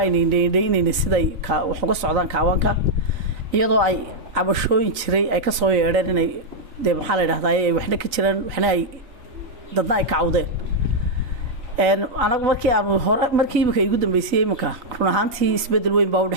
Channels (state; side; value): late; left; 4.0 ms